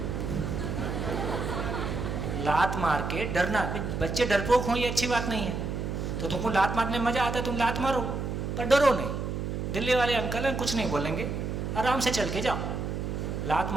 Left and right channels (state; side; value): noise; right; hum, 3 dB below the sound